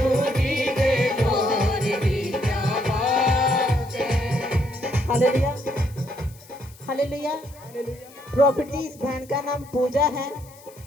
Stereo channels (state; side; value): noise; left; hiss, 24 dB below the sound